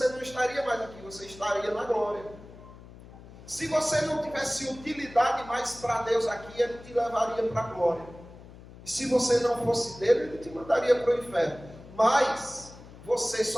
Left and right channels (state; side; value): noise; left; hum, 18 dB below the sound